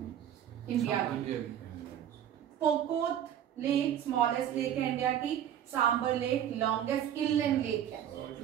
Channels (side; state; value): left; quieter; 10.2 dB